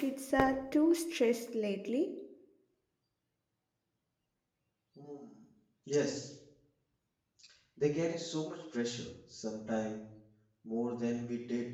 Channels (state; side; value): identical; both; correlation 1.00